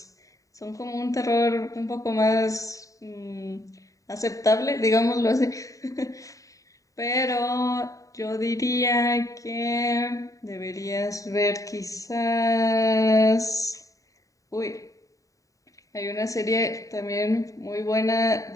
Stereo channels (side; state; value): right; late; 0.16 ms